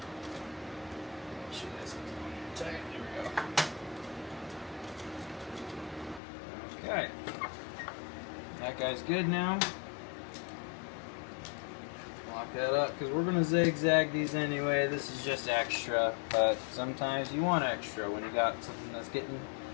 sure that's tight. There we go. Okay. That guy's good now. Lock that up because we're going to zigzag these anyway. This is just extra, but sometimes you want extra when you got something that's getting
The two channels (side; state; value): right; drops out; at 6.2 s